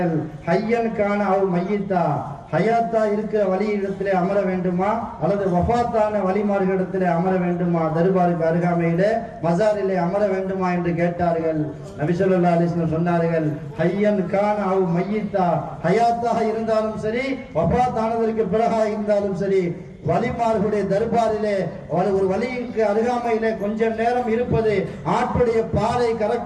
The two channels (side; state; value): both; identical; correlation 1.00